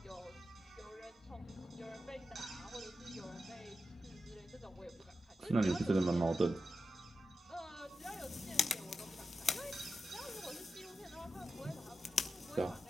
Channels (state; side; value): normal; both; correlation 0.91